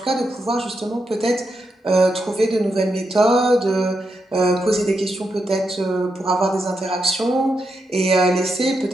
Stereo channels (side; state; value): both; normal; correlation 0.84